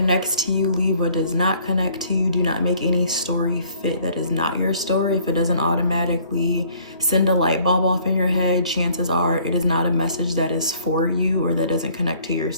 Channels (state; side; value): inverted; both; correlation -0.58